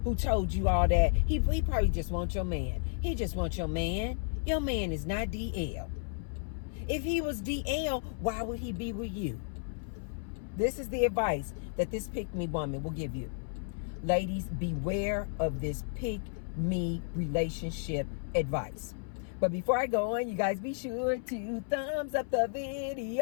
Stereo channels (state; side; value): silent; right; 56 dB below the other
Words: who told you all that, he probably just wants your man. He just wants your man. Your man is not DL. If he was DL, why would he be with you? This is the advice that this pick-me woman will give you. Ladies, beware of this pick-me relationship advice. But before I go on, you guys be sure to thumbs up the